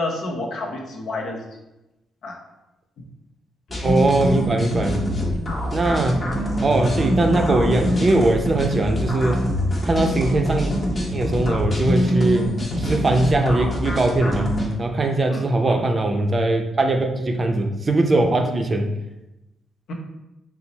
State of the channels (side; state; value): both; normal; correlation 0.85